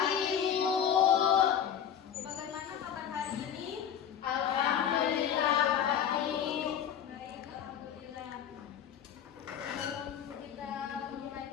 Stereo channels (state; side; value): quieter; right; 8.8 dB